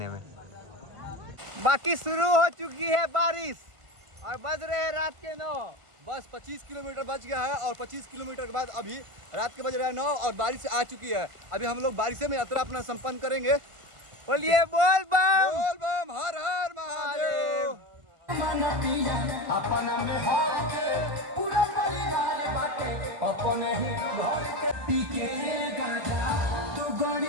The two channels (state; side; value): late; left; 1.4 ms